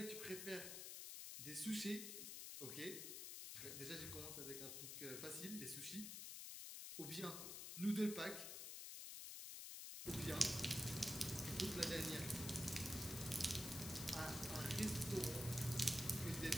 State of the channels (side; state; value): left; noise; hiss, 6 dB below the sound